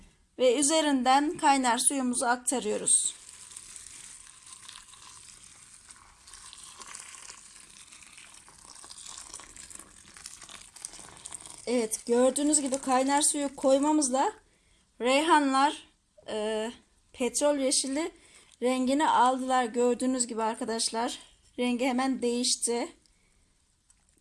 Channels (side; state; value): both; identical; correlation 1.00